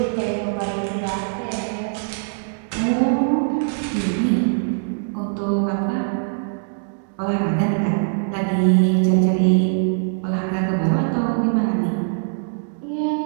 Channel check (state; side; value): silent; left; digital silence